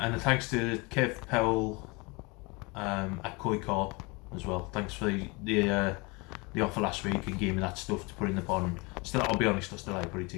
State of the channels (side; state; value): right; quieter; 27.4 dB